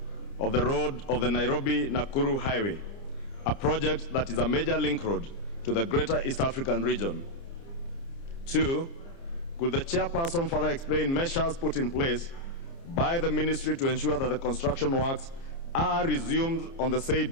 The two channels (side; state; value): right; late; 30 ms